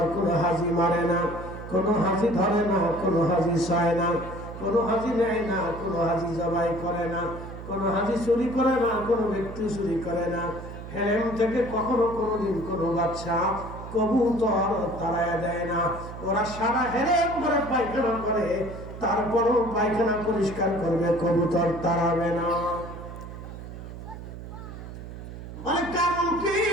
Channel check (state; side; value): noise; right; hum, 11 dB below the sound